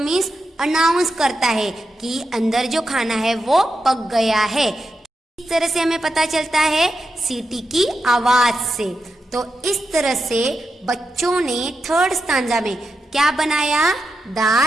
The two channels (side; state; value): both; normal; correlation 0.87